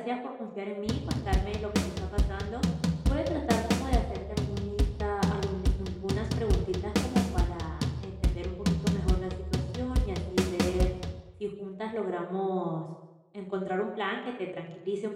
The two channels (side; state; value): both; identical; correlation 1.00